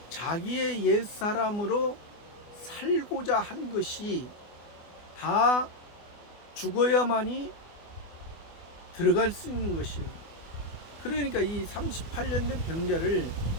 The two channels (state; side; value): late; right; 24 ms